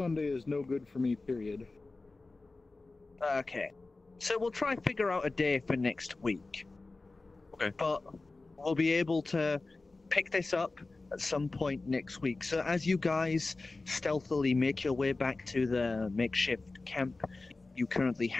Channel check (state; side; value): quieter; right; 3.4 dB